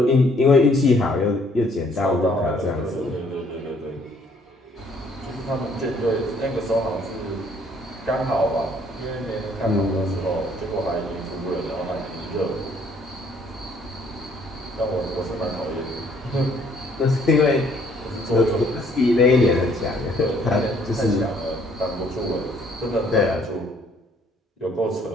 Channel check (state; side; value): normal; both; correlation 0.63